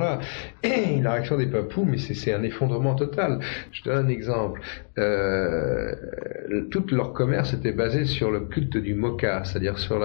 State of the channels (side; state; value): right; silent; 61 dB below the other